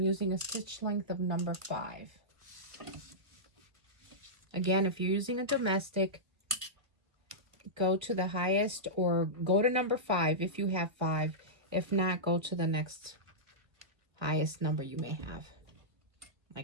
a stitch length of number 5. Again, if you're using a domestic, go to the highest or go to number 5 if you have 5. If not, go to the next highest number you may have,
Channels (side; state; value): left; late; 1.8 ms